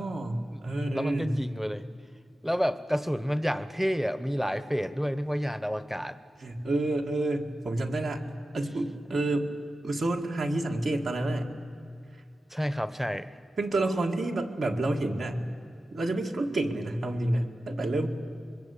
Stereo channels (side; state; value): both; normal; correlation 0.93